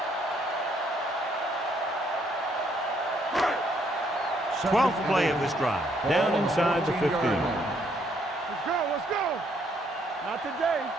12th play of this drive. Down inside the 15. Let's go. Not today.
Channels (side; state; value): both; normal; correlation 0.70